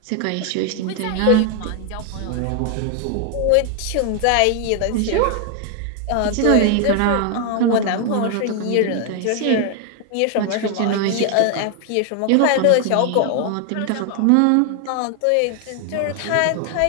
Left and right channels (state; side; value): different; both; correlation 0.00